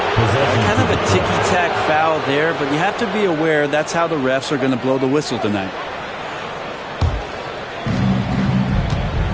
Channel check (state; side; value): identical; both; correlation 1.00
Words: Kind of a ticky-tack foul there, but you have to be aware that's how the refs are going to blow the whistle tonight.